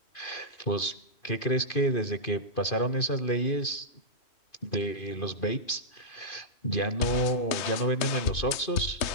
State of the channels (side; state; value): right; late; 2.5 ms